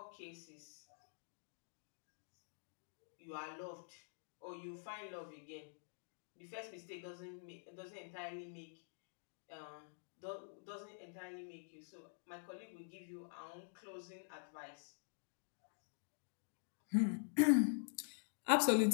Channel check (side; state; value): right; silent; digital silence